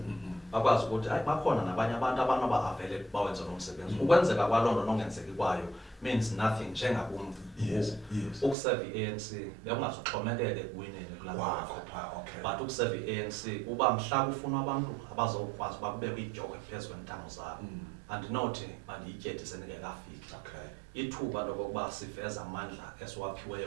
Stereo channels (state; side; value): drops out; left; at 8.6 s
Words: bakwazi ukuthi hayi bakhona nabanye abantu abanoba avele bawenze lo msebenzi. Ukwenzeka kwaloo nto nongenzeki kwayo means nothing njengabumntu. Yes. Ukuserve i-ANC bekungazuxhomekeke ekuwineni kulaa but ukuserve i-ANC uba mhla kufuna abantu abazokwazi uba kubekho idyoko phezu kwentamo zabo, andinothi mandiyityethe sendingekafiki. Ithuba lokokuba siveze amandla